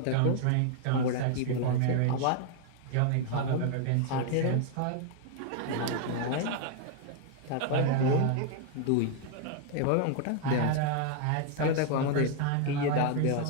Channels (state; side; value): different; both; correlation 0.00